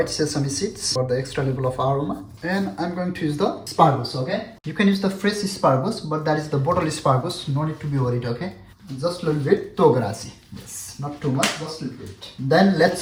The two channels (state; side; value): identical; both; correlation 1.00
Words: sesame seeds for the extra level of aroma. And I'm going to use the asparagus, okay? You can use the fresh asparagus, but that is the bottle asparagus. No need to be worried, okay? Just a little bit togarashi. Yes, not too much, just a little bit. Then